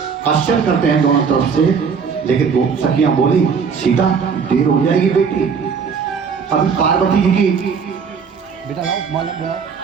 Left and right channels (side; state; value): left; quieter; 6.1 dB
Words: आश्चर्य करते हैं दोनों तरफ से। लेकिन वो सखियां बोली सीता देर हो जाएगी बेटी। अभी पार्वती जी की बेटा लाओ, माला बुलाओ,